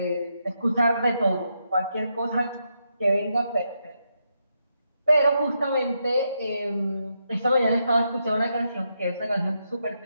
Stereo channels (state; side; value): inverted; both; correlation -0.82